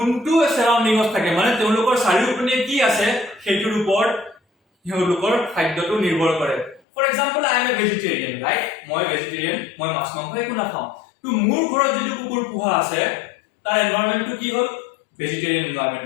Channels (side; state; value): right; drops out; at 6.8 s